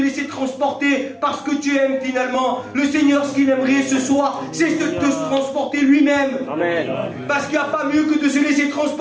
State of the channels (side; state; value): both; identical; correlation 1.00